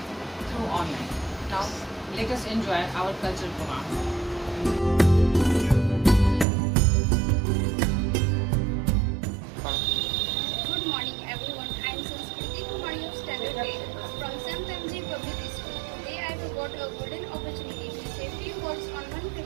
through online. Now let us enjoy our cultural program. Good morning everyone. I am Sanskriti Kumari of Standard 8 from St. MG Public School. Today I have got a golden opportunity to say few words on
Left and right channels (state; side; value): drops out; left; at 6.5 s